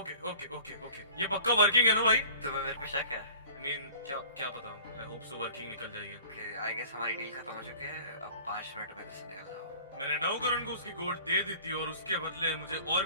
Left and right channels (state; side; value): inverted; both; correlation -0.45